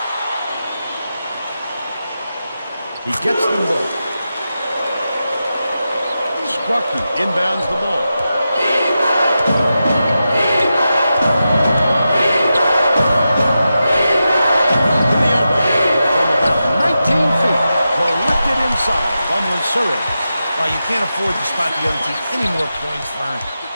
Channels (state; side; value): inverted; both; correlation -0.90